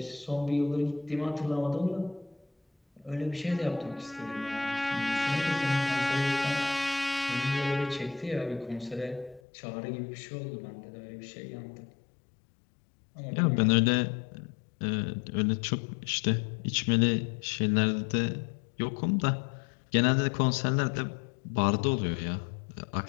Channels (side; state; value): right; drops out; at 9.4 s